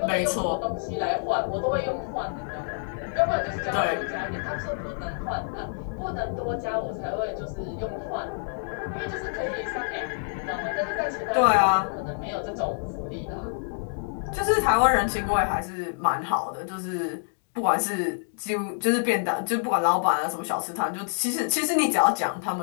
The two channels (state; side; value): silent; right; digital silence